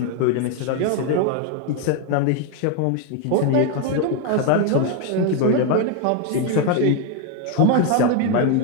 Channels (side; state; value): both; different; correlation 0.01